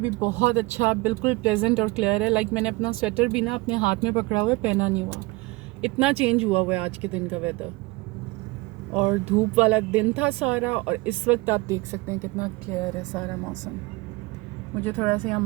बहुत अच्छा, बिल्कुल प्लेजेंट और क्लियर है। लाइक मैंने अपना स्वेटर भी ना अपने हाथ में पकड़ा हुआ है, पहना नहीं हुआ, इतना चेंज हुआ हुआ है आज के दिन का वेदर। और धूप वाला दिन था सारा, और इस वक्त आप देख सकते हैं कितना क्लियर है सारा मौसम। मुझे थोड़ा सा यहाँ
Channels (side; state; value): left; quieter; 22.9 dB